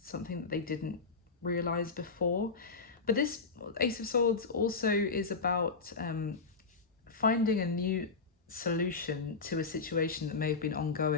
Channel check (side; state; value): right; quieter; 4.5 dB